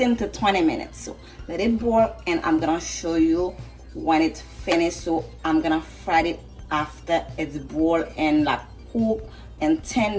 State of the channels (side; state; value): both; identical; correlation 1.00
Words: to 20 minutes. So let it boil, and I'm gonna show you when it's finished. So I'm gonna fry it after it's boiled and like cook and